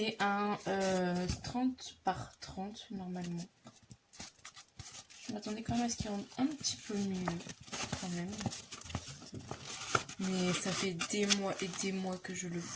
un 30 par 30 normalement. Je m'attendais quand même à ce qu'il rende un petit peu mieux, quand même. Mais ça fait des mois et des mois que je le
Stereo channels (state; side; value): identical; both; correlation 1.00